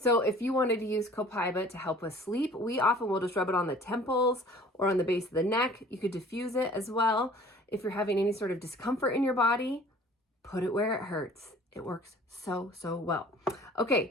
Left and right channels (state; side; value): normal; both; correlation 0.50